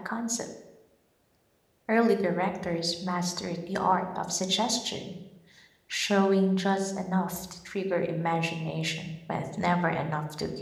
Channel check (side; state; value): both; identical; correlation 1.00